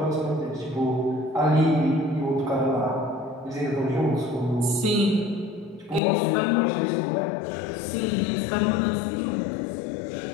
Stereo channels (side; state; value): right; drops out; at 6.0 s